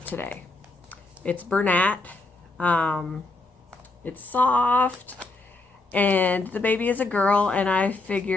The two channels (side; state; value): right; quieter; 3.1 dB